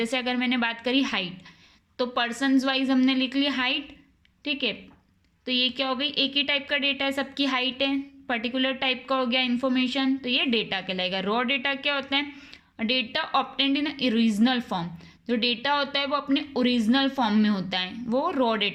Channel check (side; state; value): both; identical; correlation 1.00